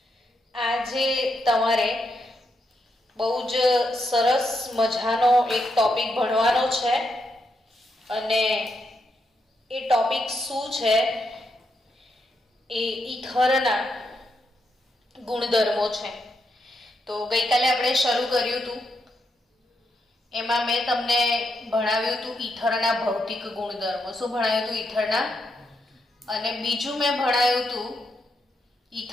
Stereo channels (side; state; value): both; normal; correlation 0.81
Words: આજે તમારે બહુ જ સરસ મજાનો એક ટોપિક ભણવાનો છે અને એ ટોપિક શું છે? એ ઈથરના ગુણધર્મો છે. તો ગઈકાલે આપણે શરૂ કર્યું હતું. એમાં મેં તમને ભણાવ્યું હતું ઈથરના ભૌતિક ગુણધર્મો. શું ભણાવ્યું હતું? ઈથરના. અને બીજું મેં ભણાવ્યું હતું